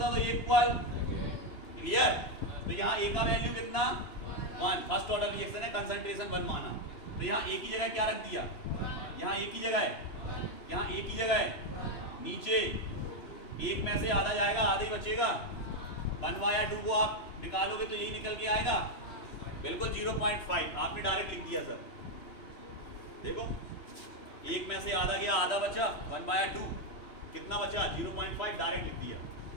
तो ए इक्वल, क्लियर। तो यहाँ ए का वैल्यू कितना, 1, फर्स्ट ऑर्डर रिएक्शन है, कंसंट्रेशन 1 माना। तो यहाँ ए की जगह क्या रख दिया, यहाँ ए की जगह है, यहाँ ए की जगह है, नीचे एक में से आधा जाएगा, आधा ही बचेगा। 1/2 को आप निकालोगे तो यही निकल के आएगा, बिल्कुल 0.5 आपने डायरेक्ट लिख दिया सर। देखो एक में से आधा गया, आधा बचा, 1/2 कितना बचा, 0.5 डायरेक्ट लिख दिया,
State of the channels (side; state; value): right; late; 2.9 ms